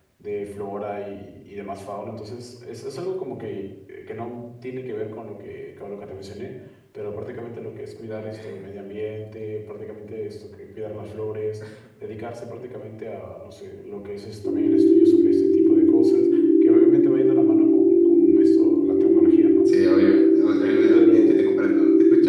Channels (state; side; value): identical; both; correlation 1.00